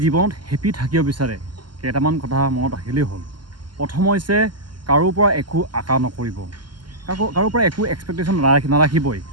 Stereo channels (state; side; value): late; left; 0.71 ms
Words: জীৱনত হেপি থাকিব বিচাৰে, কেইটামান কথা মনত ৰাখিলেই হ'ল। প্ৰথম হৈছে, কাৰোৰ পৰা একো আশা নকৰিব, কাৰোৰ পৰা একো এক্সপেক্টেশ্যন নাৰাখিবই।